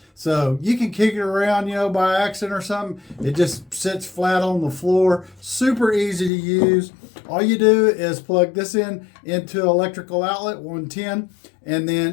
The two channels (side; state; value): right; drops out; at 6.3 s